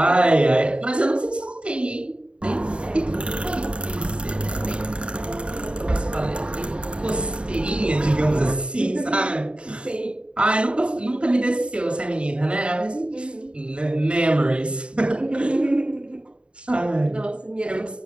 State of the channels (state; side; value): late; left; 0.055 ms